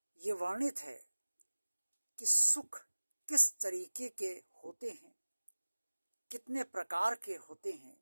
ये वर्णित है कि सुख किस तरीके के होते हैं, कितने प्रकार के होते हैं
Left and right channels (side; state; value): both; inverted; correlation -1.00